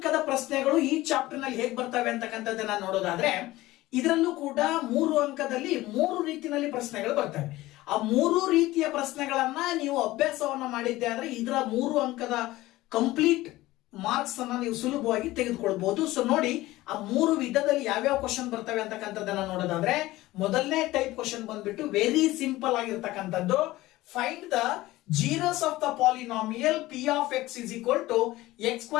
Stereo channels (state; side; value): quieter; right; 17.7 dB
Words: ಪ್ರಶ್ನೆಗಳು ಈ ಚಾಪ್ಟರ್ ನಲ್ಲಿ ಹೇಗೆ ಬರ್ತವೆ ಅಂತಕ್ಕಂಥದ್ದನ್ನ ನೋಡೋದಾದ್ರೆ, ಇದರಲ್ಲೂ ಕೂಡ 3 ಅಂಕದಲ್ಲಿ 3 ರೀತಿಯಲ್ಲಿ ಪ್ರಶ್ನೆಗಳು ಬರ್ತವೆ. ಆ 3 ರೀತಿಯ ಪ್ರಶ್ನೆಗಳನ್ನ ನೀವು ಅಭ್ಯಾಸವನ್ನ ಮಾಡಿದ್ದೆ ಆದ್ರೆ ಇದರ 3 ಅಂಕದ ಕಂಪ್ಲೀಟ್ ಮಾರ್ಕ್ಸ್ ಅನ್ನ ನೀವು ಸುಲಭವಾಗಿ ತೆಗೆದುಕೊಳ್ಬಹುದು. ಸೊ ನೋಡಿ, ಆ 3 ವಿಧದಲ್ಲಿ ಯಾವ್ಯಾವ ಕ್ವಶನ್ ಬರ್ತವೆ ಅಂತಕ್ಕಂಥದ್ದನ್ನ ನೋಡೋದಾದ್ರೆ, ಮೊದಲನೇ ಟೈಪ್ ಕ್ವಶನ್ ಬಂದ್ಬಿಟ್ಟು ವೆರಿ ಸಿಂಪಲ್ ಆಗಿರ್ತಕ್ಕಂಥದ್ದು. Find the zeros of the polynomial p of x is equal to x